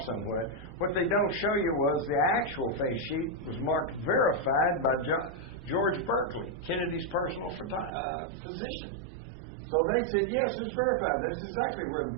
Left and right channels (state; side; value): drops out; left; at 7.9 s